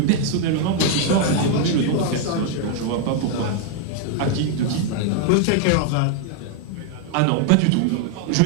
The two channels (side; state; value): both; different; correlation 0.00